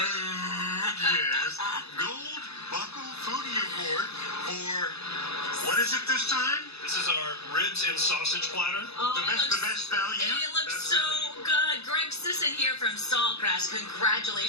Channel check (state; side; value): late; right; 0.79 ms